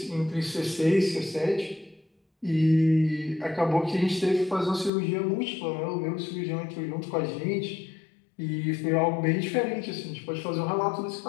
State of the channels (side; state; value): right; drops out; at 4.9 s